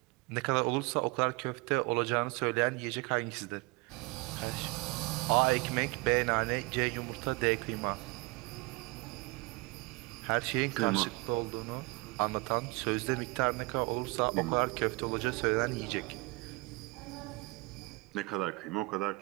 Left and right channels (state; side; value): quieter; left; 25.5 dB